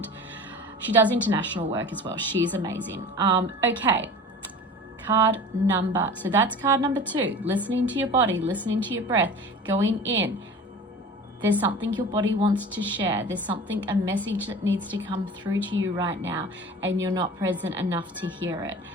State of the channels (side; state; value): both; normal; correlation 0.38